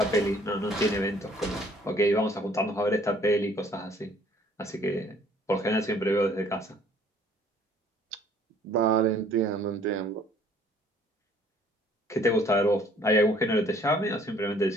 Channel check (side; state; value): both; normal; correlation 0.58